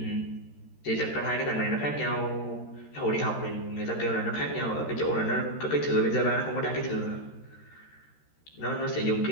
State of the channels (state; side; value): late; right; 13 ms